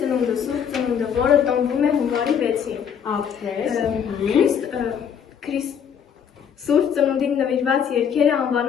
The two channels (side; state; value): right; quieter; 7.8 dB